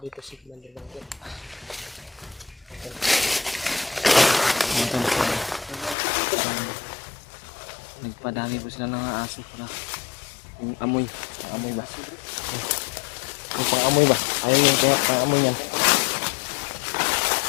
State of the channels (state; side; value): drops out; right; at 6.0 s